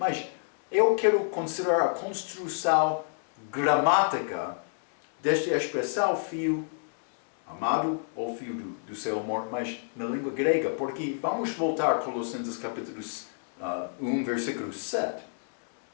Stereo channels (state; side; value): silent; right; digital silence